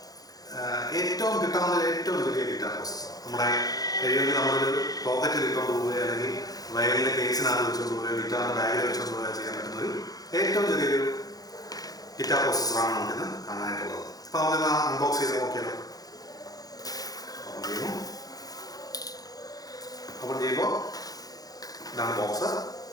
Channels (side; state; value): right; late; 0.18 ms